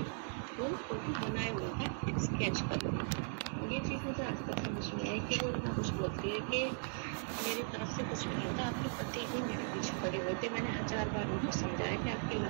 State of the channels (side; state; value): left; silent; 52 dB below the other